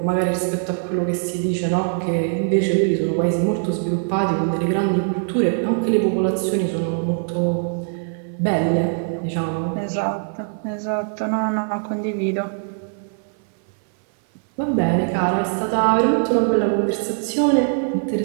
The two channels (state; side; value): silent; left; 60 dB below the other